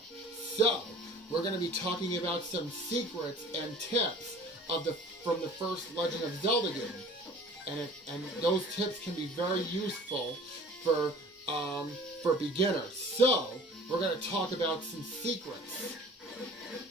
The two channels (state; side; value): normal; both; correlation 0.46